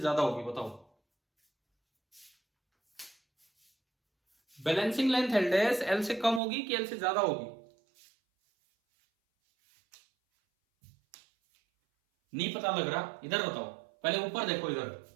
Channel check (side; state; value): left; drops out; at 6.4 s